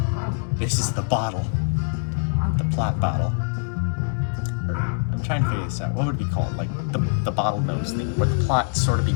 This is the bottle. The plot bottle. Or, I'm trying to figure this out. What would it be called? Like, the bottlenose thing, where the plot sort of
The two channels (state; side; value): silent; right; 62 dB below the other